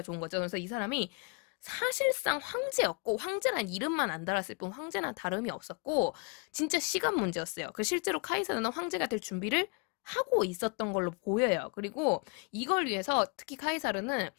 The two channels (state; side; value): quieter; right; 34.4 dB